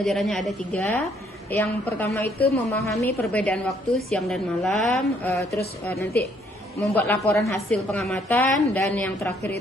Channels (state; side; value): normal; both; correlation 0.67